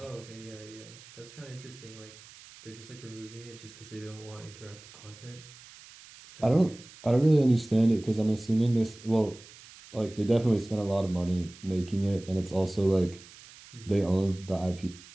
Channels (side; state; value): right; noise; hiss, 20 dB below the sound